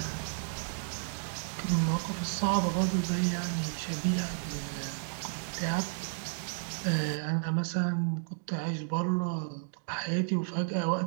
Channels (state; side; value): silent; left; digital silence